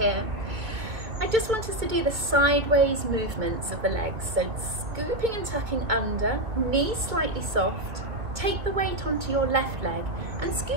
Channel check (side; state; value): left; late; 2.0 ms